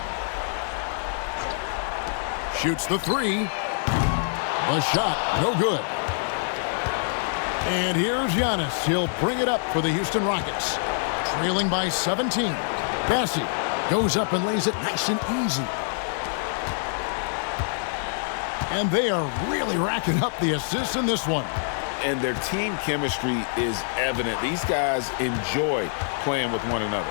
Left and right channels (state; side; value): silent; right; digital silence